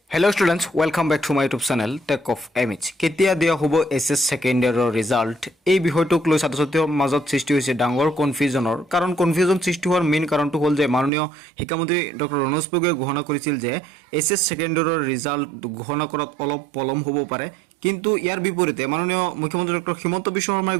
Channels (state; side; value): drops out; left; at 11.1 s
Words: Hello students, welcome back to my YouTube channel Tech of Image. কেতিয়া দিয়া হ'ব এছএছ সেকেন্ড ইয়াৰৰ ৰিজাল্ট এই বিষয়টোক লৈ ছাত্ৰ-ছাত্ৰীৰ মাজত সৃষ্টি হৈছে ডাঙৰ কনফিউজনৰ কাৰণ কনফিউজন সৃষ্টি হোৱাৰ মেইন কাৰণটো হ'ল যে মাননীয় শিক্ষামন্ত্ৰী ডক্টৰ ৰণোজ পেগুৱে ঘোষণা কৰিছিল যে এছএছ সেকেন্ড ইয়াৰৰ ৰিজাল্ট ঘোষণা কৰাত অলপ পলম হ'ব পাৰে কিন্তু ইয়াৰ বিপৰীতে মাননীয় মুখ্যমন্ত্ৰী ডক্টৰ হিমন্ত বিশ্ব শৰ্মাই